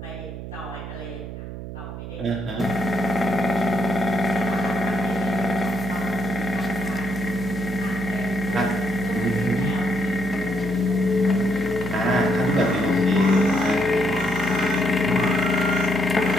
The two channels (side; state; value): right; noise; hum, 9 dB below the sound